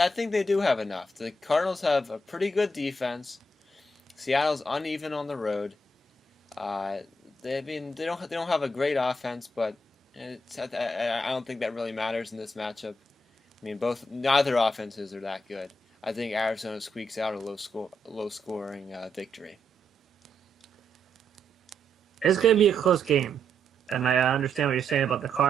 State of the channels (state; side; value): normal; both; correlation 0.79